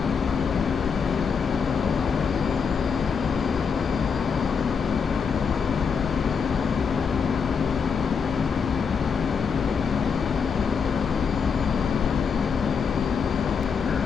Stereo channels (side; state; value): right; quieter; 6.1 dB